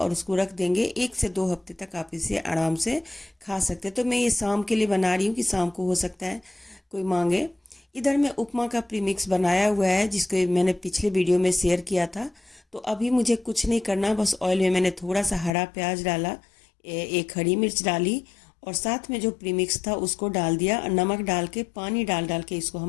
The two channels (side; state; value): right; drops out; at 15.5 s